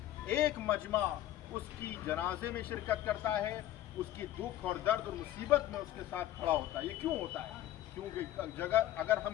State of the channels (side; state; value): right; quieter; 13.2 dB